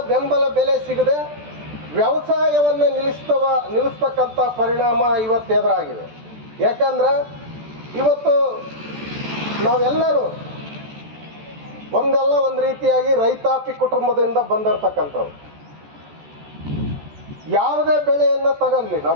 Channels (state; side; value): late; left; 14 ms